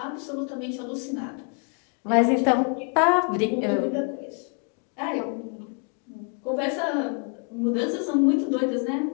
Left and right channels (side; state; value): right; quieter; 39.6 dB